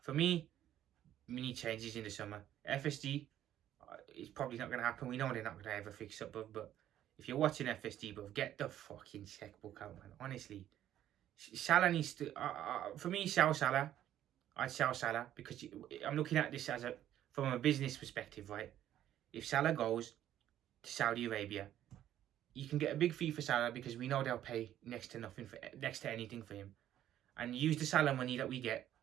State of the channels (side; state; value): left; quieter; 11.8 dB